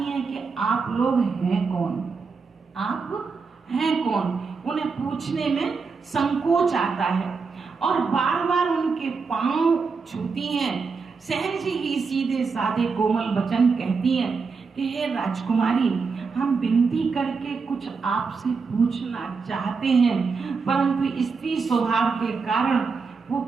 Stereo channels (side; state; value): left; quieter; 4.9 dB